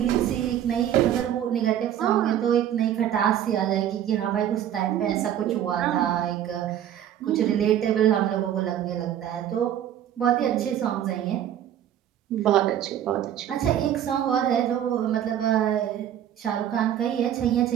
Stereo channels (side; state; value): left; quieter; 10.7 dB